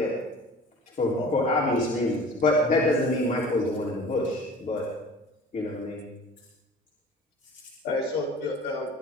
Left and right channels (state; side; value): normal; both; correlation 0.44